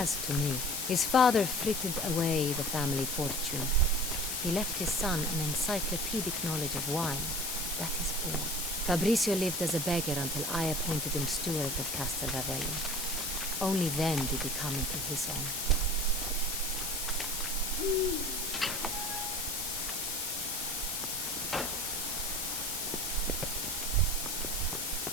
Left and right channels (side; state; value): left; noise; hiss, 1 dB below the sound